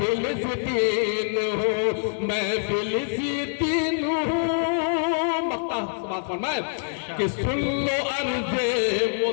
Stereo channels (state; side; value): silent; right; digital silence